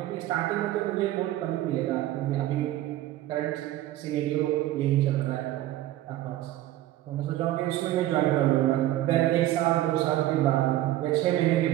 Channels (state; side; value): quieter; left; 14.5 dB